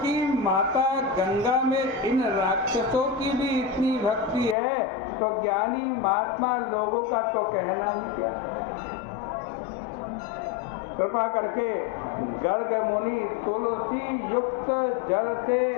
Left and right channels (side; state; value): right; drops out; at 4.5 s